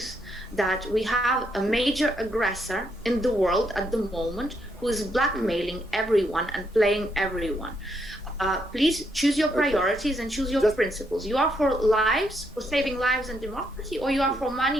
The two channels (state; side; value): normal; both; correlation 0.76